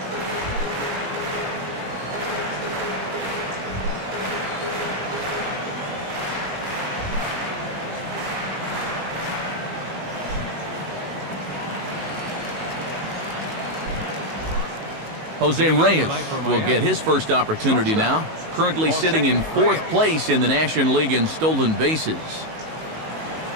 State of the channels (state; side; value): late; left; 19 ms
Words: Jose Reyes will get his first opportunity now, currently sitting in 4th place in the National League in stolen bases.